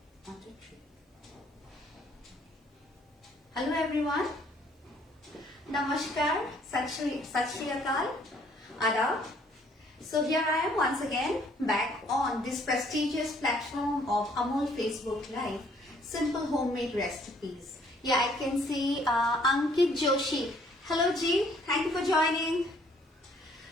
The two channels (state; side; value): normal; both; correlation 0.62